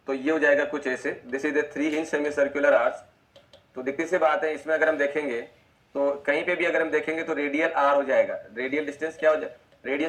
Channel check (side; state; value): both; identical; correlation 1.00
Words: तो ये हो जाएगा कुछ ऐसे, this is the 3 inch semi circular arch. तो दिखती सी बात है, इसमें अगर हम देखेंगे तो कहीं पे भी अगर हम देखेंगे तो रेडियल आर हो जाएगा। रेडियल डिस्टेंस क्या हो जाएगा,